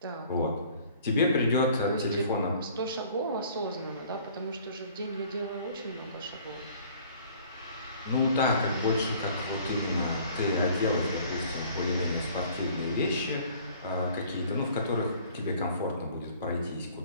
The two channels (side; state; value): both; inverted; correlation -0.53